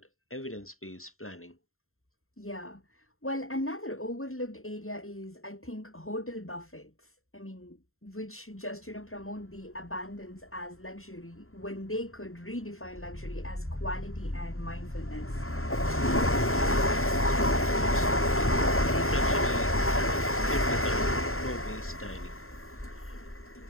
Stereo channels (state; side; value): late; right; 0.62 ms